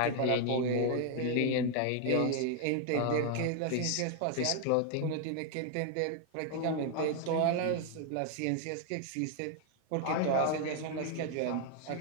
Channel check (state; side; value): different; both; correlation 0.00